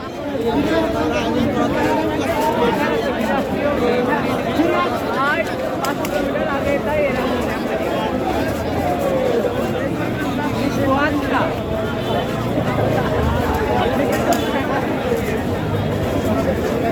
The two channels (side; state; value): both; identical; correlation 1.00